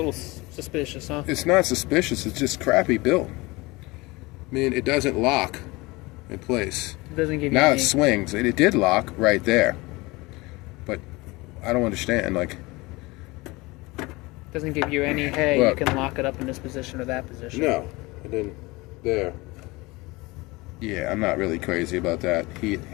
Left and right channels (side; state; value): right; quieter; 23.1 dB